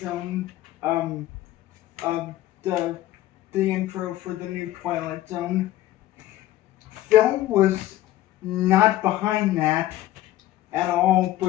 the intro for the new Twilight Zone, Phil was not behind that at all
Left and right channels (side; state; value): right; quieter; 14.4 dB